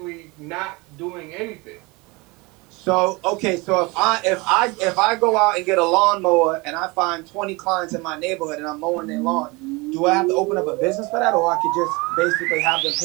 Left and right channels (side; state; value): left; quieter; 25.6 dB